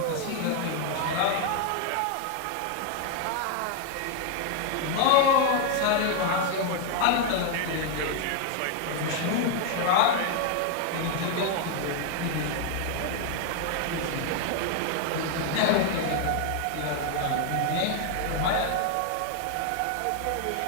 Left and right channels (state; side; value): different; both; correlation 0.00